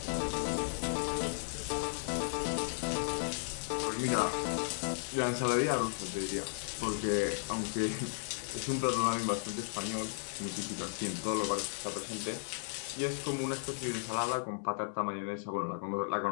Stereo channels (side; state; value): right; silent; digital silence